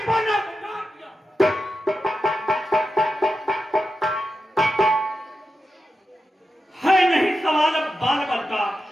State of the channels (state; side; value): normal; both; correlation 0.90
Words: पर नाम पर हार किया। है नहीं सवाल अब बाल बल का,